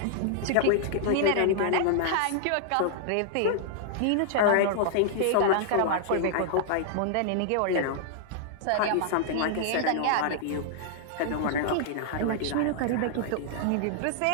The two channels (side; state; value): both; different; correlation -0.01